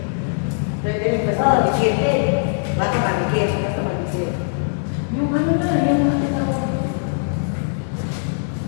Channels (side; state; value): right; silent; digital silence